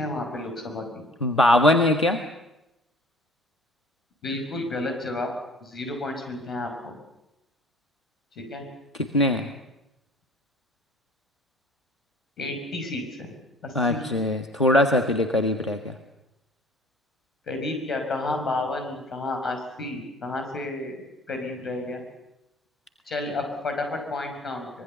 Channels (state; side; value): normal; both; correlation 0.50